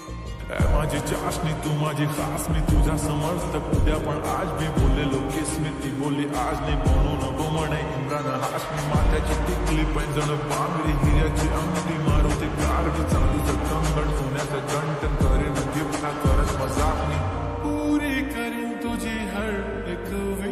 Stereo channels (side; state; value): both; identical; correlation 1.00